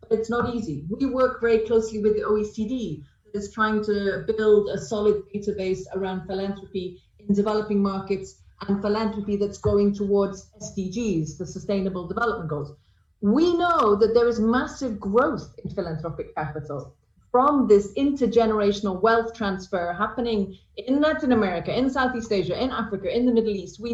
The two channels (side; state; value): both; identical; correlation 1.00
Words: it's not easy. We work very closely with the OECD that is trying to build a solid database around philanthropy in developing markets and philanthropy that's going towards SDGs, the Sustainable Development Goals. We know that there is massive growth in philanthropic capital from this intergenerational wealth transfer happening in Latin America, in Southeast Asia, in Africa, in the Middle East.